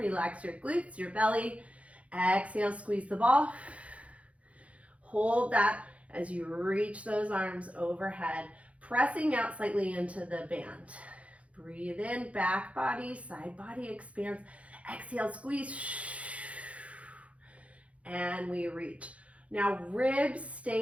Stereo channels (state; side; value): late; left; 0.064 ms